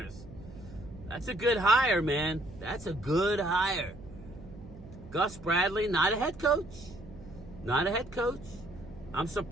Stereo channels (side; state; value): right; noise; hum, 17 dB below the sound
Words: That's a good hire, man. That's a good hire. Gus Bradley, not a head coach. Not a head coach. I'm